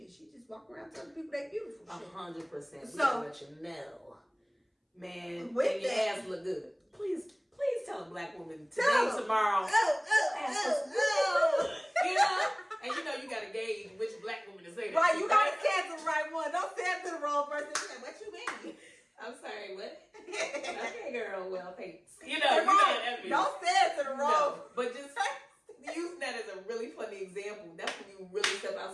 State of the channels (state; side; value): identical; both; correlation 1.00